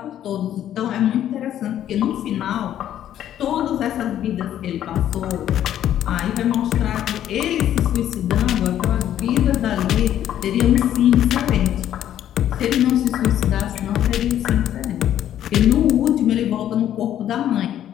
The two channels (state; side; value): quieter; right; 11.2 dB